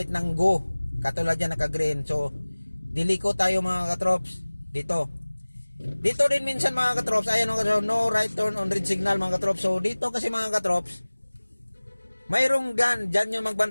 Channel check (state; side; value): inverted; both; correlation -1.00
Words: ng go. Katulad yan naka-green. So, diliko tayo mga trop dito. Dito din minsan mga trop, ayan mga trop, no right turn on red signal mga trop. So, dito kasi mga trop, mayroong dyan yung